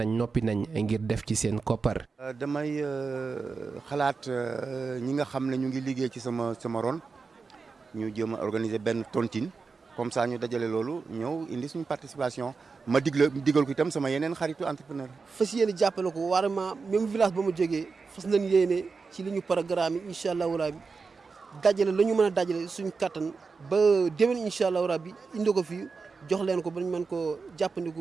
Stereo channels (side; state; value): left; quieter; 4.7 dB